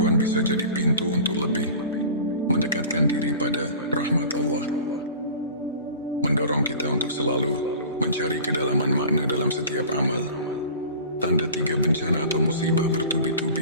bisa jadi pintu untuk lebih mendekatkan diri pada rahmat Allah, mendorong kita untuk selalu mencari kedalaman makna dalam setiap amal. Tanda 3, bencana atau musibah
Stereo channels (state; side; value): inverted; both; correlation -0.40